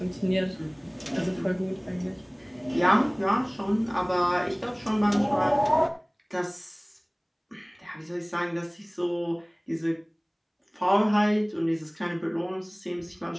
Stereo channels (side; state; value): both; identical; correlation 1.00